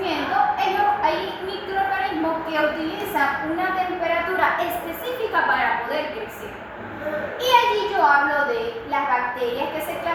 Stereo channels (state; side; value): identical; both; correlation 1.00